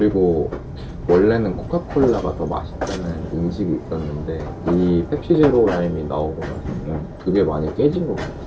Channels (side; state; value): both; identical; correlation 1.00